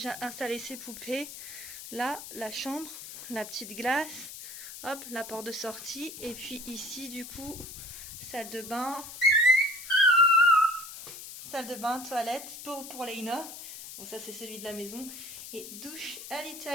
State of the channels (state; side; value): noise; left; hiss, 11 dB below the sound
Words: installé ses poupées. Là la chambre, la petite glace, hop, la porte de sortie. Et puis ici du coup salle de bain, toilette pour Laina. Bon ça c'est celui de la maison. Et douche à